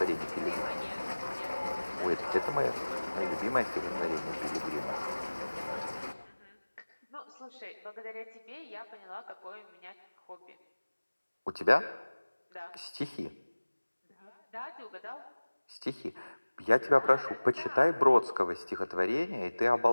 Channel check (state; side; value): inverted; both; correlation -1.00